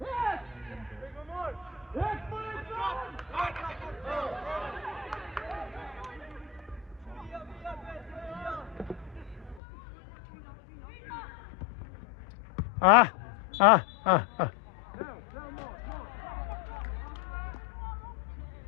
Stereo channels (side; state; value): right; drops out; at 9.6 s